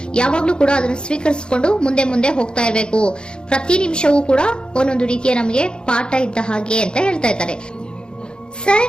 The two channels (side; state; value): right; late; 0.049 ms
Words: ಯಾವಾಗ್ಲೂ ಕೂಡ ಅದನ್ನು ಸ್ವೀಕರಿಸಿಕೊಂಡು ಮುಂದೆ ಮುಂದೆ ಹೋಗ್ತಾ ಇರಬೇಕು. ಪ್ರತಿ ನಿಮಿಷವೂ ಕೂಡ ಒಂದೊಂದು ರೀತಿಯ ನಮಗೆ ಪಾಠ ಇದ್ದ ಹಾಗೆ ಅಂತ ಹೇಳ್ತಾ ಇದ್ದಾರೆ.